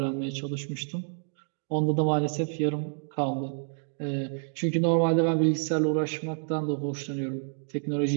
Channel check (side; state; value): left; silent; digital silence